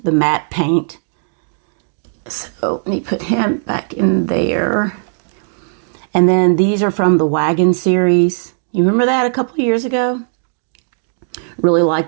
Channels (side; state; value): left; silent; digital silence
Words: matte paint. So let me put him back in there. And then these are from the Wagon series. You remember that a couple of years ago? Really